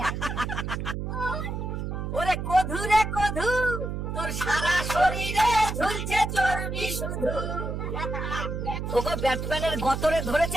ওরে কধু রে কধু, তোর সারা শরীরে ঝুলছে চর্বি শুধু। ওগো ব্যাটম্যানের গতরে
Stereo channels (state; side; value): noise; right; hum, 4 dB below the sound